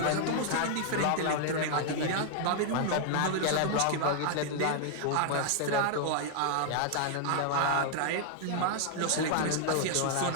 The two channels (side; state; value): both; different; correlation 0.00